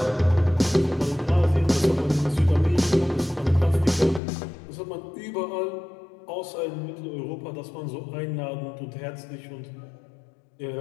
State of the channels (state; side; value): drops out; right; at 4.2 s